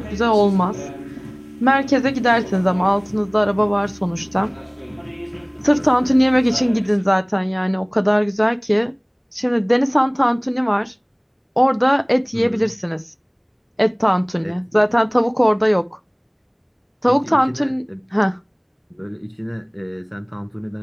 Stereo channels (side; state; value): both; identical; correlation 1.00